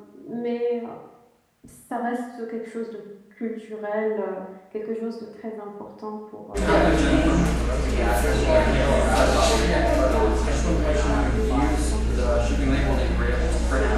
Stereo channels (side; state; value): both; identical; correlation 1.00